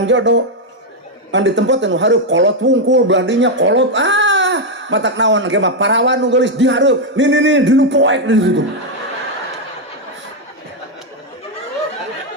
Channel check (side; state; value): both; normal; correlation 0.02